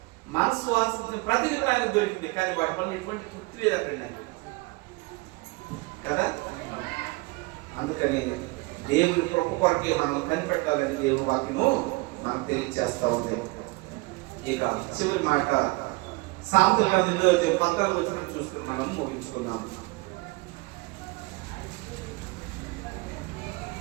మనసు ఆశించిన ప్రతిదీ ఆయనకు దొరికింది. కానీ వాటి వల్ల ఎటువంటి తృప్తి లేదండి కదా. అందుకని దేవుని కృప కొరకే మనం కనిపెట్టాలని దేవుని వాక్యము మనకు తెలియజేస్తా ఉంది. ఇక చివరి మాట సామెతల గ్రంథం 14వ వచనం చూసుకుని మనం ముగించుకున్నాం.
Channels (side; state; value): left; quieter; 24.4 dB